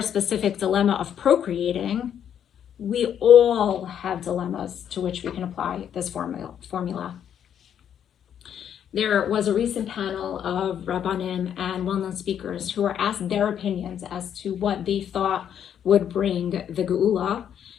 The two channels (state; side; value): quieter; right; 9.2 dB